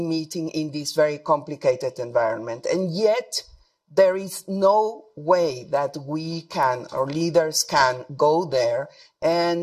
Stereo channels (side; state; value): both; identical; correlation 1.00